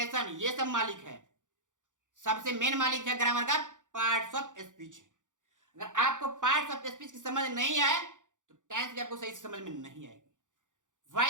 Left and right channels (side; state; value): left; late; 0.87 ms